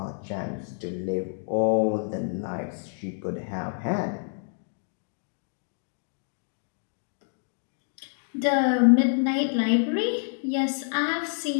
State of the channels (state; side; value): silent; right; digital silence